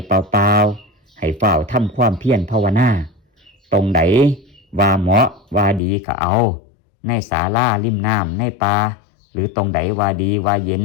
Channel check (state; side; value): drops out; right; at 5.8 s